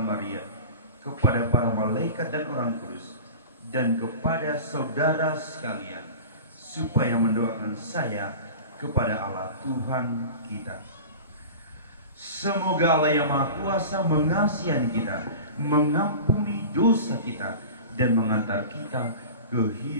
Maria, kepada para malaikat dan orang kudus, dan kepada saudara sekalian, supaya mendoakan saya kepada Allah Tuhan kita. Semoga Allah yang Maha Kuasa mengasihi kita, mengampuni dosa kita, dan mengantar kita ke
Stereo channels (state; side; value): inverted; both; correlation -0.35